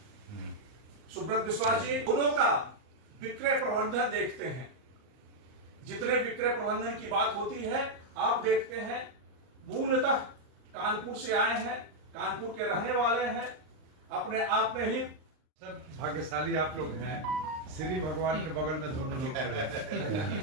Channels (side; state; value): left; late; 38 ms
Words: सुब्रत विश्वास जी दोनों का विक्रय प्रबंधन देखते हैं। जितने विक्रय प्रबंधन की बात होती है आप देखते हैं, मूलतः कानपुर से आए हैं, कानपुर के रहने वाले हैं, अपने आप में ही सब भाग्यशाली आप लोग हैं। श्री भगवान के बगल में दोनों लोग खड़े हैं।